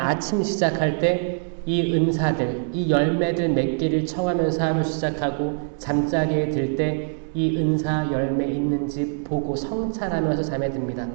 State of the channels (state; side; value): silent; left; digital silence